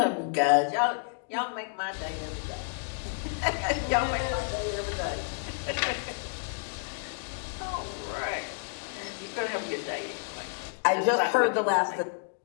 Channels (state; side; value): silent; right; digital silence